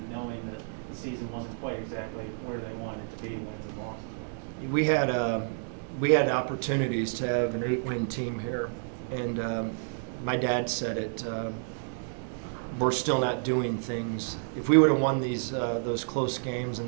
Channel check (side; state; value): left; silent; digital silence